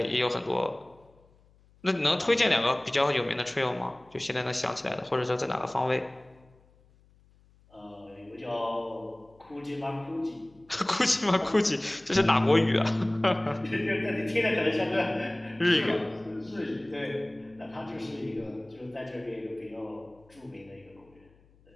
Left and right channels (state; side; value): noise; left; hum, 30 dB below the sound